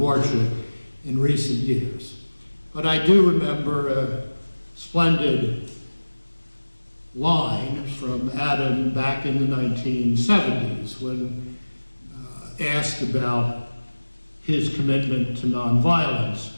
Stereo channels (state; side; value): inverted; both; correlation -1.00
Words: in recent years. But I do remember a splendid line from Adam back in the 1970s when asked about his commitment to nonviolence